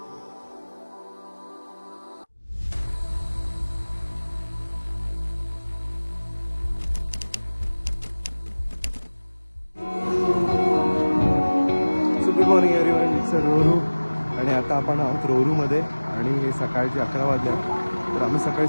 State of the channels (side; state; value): both; inverted; correlation -1.00